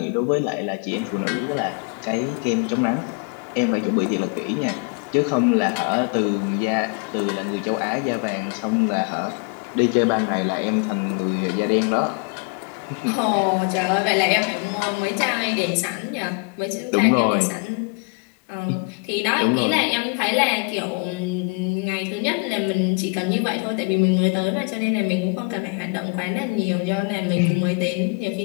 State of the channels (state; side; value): quieter; right; 34.0 dB